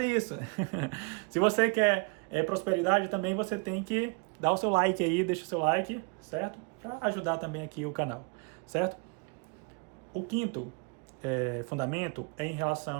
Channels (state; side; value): quieter; left; 33.2 dB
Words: isso. Se você quer prosperidade também, você tem que dar o seu like aí, deixa o seu like, certo? Para ajudar também aqui o canal, certo? O quinto fundamento é em